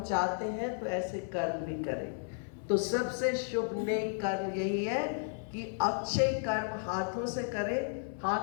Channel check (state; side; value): silent; right; digital silence